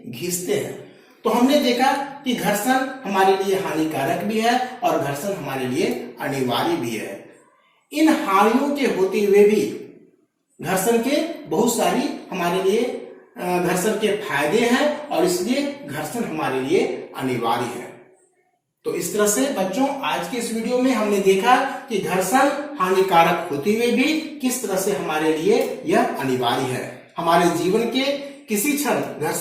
घिसते हैं। तो हमने देखा कि घर्षण हमारे लिए हानिकारक भी है और घर्षण हमारे लिए अनिवार्य भी है। इन हानियों के होते हुए भी घर्षण के बहुत सारी हमारे लिए घर्षण के फायदे हैं और इसलिए घर्षण हमारे लिए अनिवार्य है। तो इस तरह से बच्चों आज के इस वीडियो में हमने देखा कि घर्षण हानिकारक होते हुए भी किस तरह से हमारे लिए यह अनिवार्य है। हमारे जीवन के किसी क्षण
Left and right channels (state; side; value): identical; both; correlation 1.00